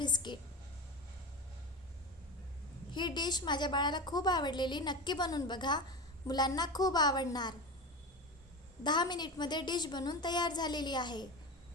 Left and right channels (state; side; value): normal; both; correlation 0.24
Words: ही डिश माझ्या बाळाला खूप आवडलेली, नक्की बनवून बघा, मुलांना खूप आवडणार. 10 मिनिटमध्ये डिश बनवून तयार झालेली आहे.